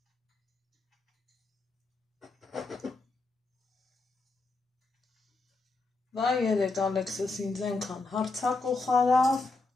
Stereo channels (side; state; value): right; quieter; 3.5 dB